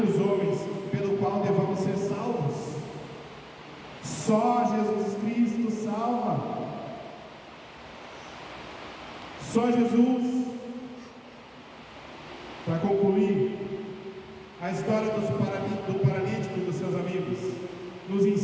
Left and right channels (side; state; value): both; identical; correlation 1.00